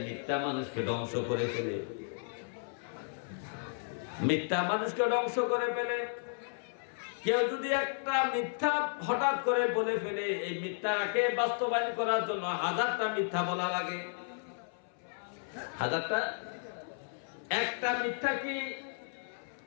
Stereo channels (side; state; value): right; silent; 55 dB below the other